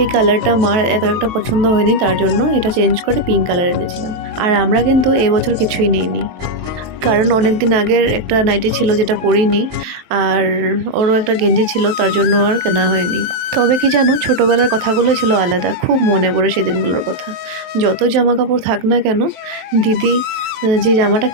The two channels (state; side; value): late; left; 23 ms